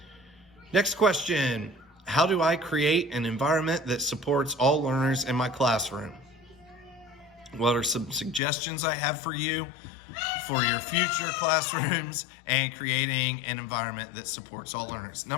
Next question. How do I create an environment that supports all learners in my classroom? What are some suggestions I have for you for your future classrooms and creating an environment that supports all learners?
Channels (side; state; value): right; drops out; at 8.4 s